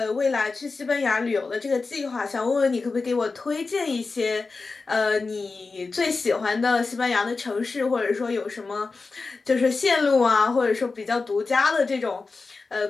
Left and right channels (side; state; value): right; quieter; 4.1 dB